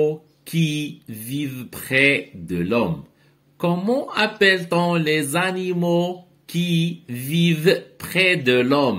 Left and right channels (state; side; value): identical; both; correlation 1.00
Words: qui vivent près de l'homme? Comment appelle-t-on les animaux qui vivent près de